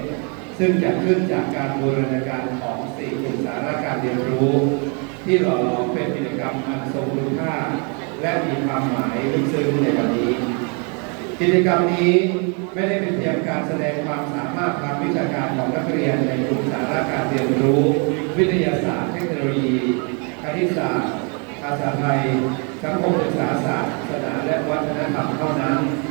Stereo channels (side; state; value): left; quieter; 35.8 dB